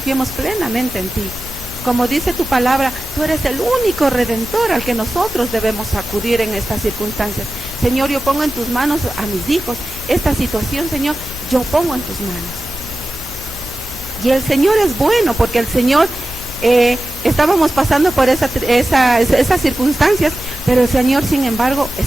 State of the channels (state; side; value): normal; both; correlation 0.94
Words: plenamente en ti. Como dice tu palabra, tú eres el único redentor al que nosotros debemos acudir en estas circunstancias. Señor, yo pongo en tus manos a mis hijos. Esta situación, Señor, yo pongo en tus manos. Y el Señor es bueno, porque el Señor, estábamos pasando por esas circunstancias, Pero el Señor, sin embargo,